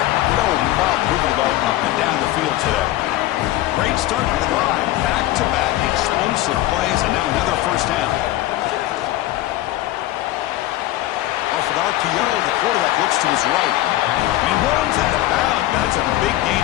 no problem moving the ball up and down the field today. Great start for the drive. Back-to-back explosive plays, and now another first down. Off an RPO, the quarterback looks to his right. And he runs out of bounds. That's a big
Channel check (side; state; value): right; quieter; 15.5 dB